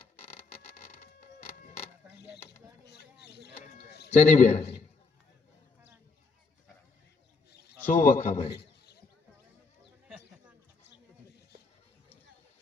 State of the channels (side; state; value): right; quieter; 4.3 dB